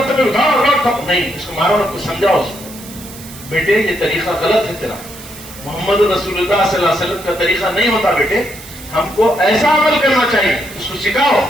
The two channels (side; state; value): right; noise; hiss, 16 dB below the sound